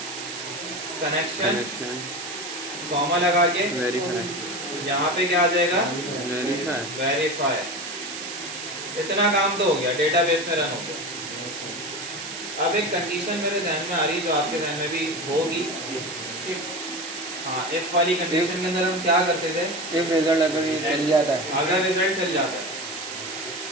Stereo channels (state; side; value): noise; right; hiss, 9 dB below the sound